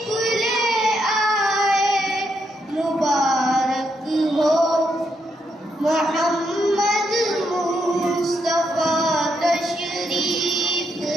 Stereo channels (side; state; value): both; normal; correlation 0.79